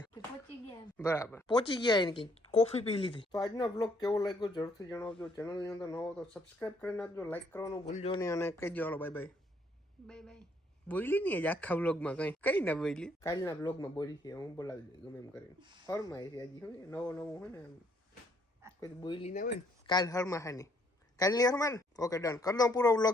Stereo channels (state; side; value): normal; both; correlation 0.67